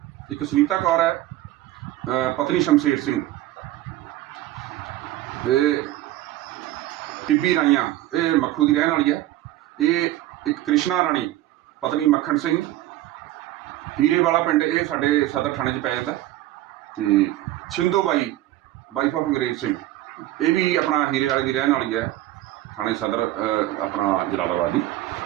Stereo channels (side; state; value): left; quieter; 15.1 dB